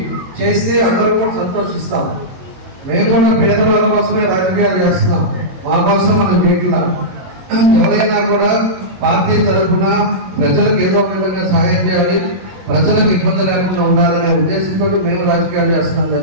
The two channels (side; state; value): left; late; 22 ms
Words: చేస్తే అందరూ కూడా సంతోషిస్తాం. మేము కూడా పేదవాళ్ళ కోసమే రాజకీయాలు చేస్తున్నాం, మా కోసం మనం చేయట్లా. ఎవరైనా కూడా పార్టీ తరఫున ప్రజలకు ఏదో విధంగా సహాయం చేయాలి, ప్రజలకు ఇబ్బంది లేకుండా ఉండాలనే ఉద్దేశంతో మేము రాజకీయాలు చేస్తున్నాం.